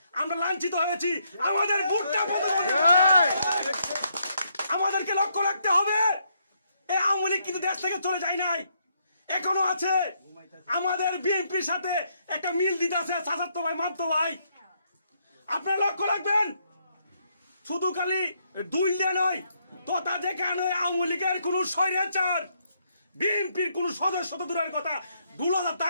আমরা লাঞ্ছিত হয়েছি। আমাদের ভোটটা আমাদেরকে লক্ষ্য রাখতে হবে। এই আওয়ামী লীগ কিন্তু দেশ থেকে চলে যায় নাই, এখনো আছে। আমাদের বিএনপির সাথে একটা মিল দিতে আছে চাচাতো ভাই মামতো ভাই, আপনারা লক্ষ্য রাখবেন। শুধু খালি দুইলে নয়, তোতা যেখানে আওয়ামী লীগের কোন স্বৈরাচার বিএনপির কোন সদস্য তো দূরের কথা 2,000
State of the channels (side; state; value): both; inverted; correlation -0.74